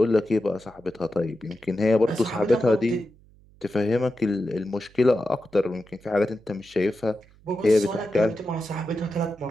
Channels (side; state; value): right; noise; hum, 27 dB below the sound